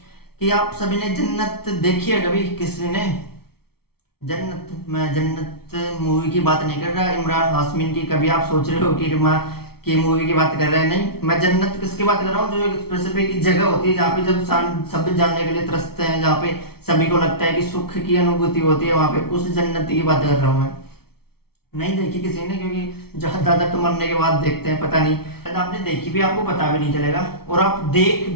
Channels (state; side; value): late; right; 0.95 ms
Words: कि आप सभी ने जन्नत देखी है कभी? किसी ने जन्नत? मैं जन्नत मूवी की बात नहीं कर रहा, इमरान हाशमी की। कभी आप सोच रहे हो कि माँ की मूवी की बात कर रहे हैं? नहीं, मैं जन्नत किसकी बात कर रहा हूँ, जो एक स्पेसिफिक जगह होती है जहाँ पे जब सभी जानने के लिए तरसते हैं, जहाँ पे सभी को लगता है कि सुख की अनुभूति होती है, वहां पे उस जन्नत की बात कर रहा हूँ मैं। नहीं देखी किसी ने, क्योंकि ज्यादा तो मरने के बाद देखते हैं, पता नहीं शायद आपने देखी भी, आपको पता भी नहीं चलेगा, और आप देख